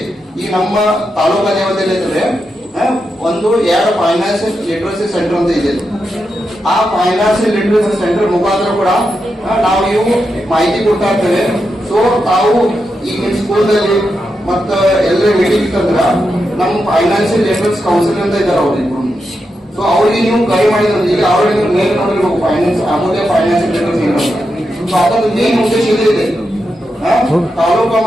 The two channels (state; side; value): normal; both; correlation 0.86